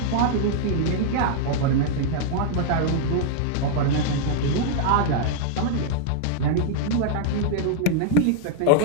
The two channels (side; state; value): both; different; correlation -0.01